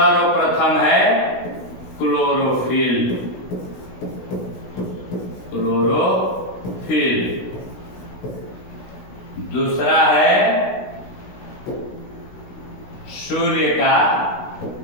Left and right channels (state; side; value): late; right; 16 ms